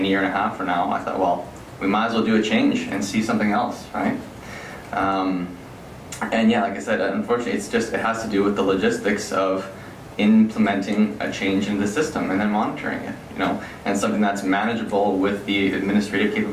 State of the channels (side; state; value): both; identical; correlation 1.00